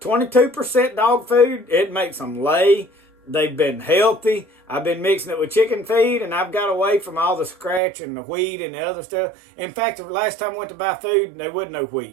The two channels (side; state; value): left; drops out; at 7.8 s